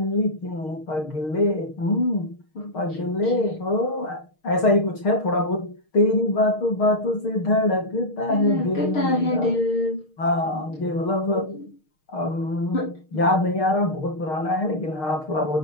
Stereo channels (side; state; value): right; late; 6.5 ms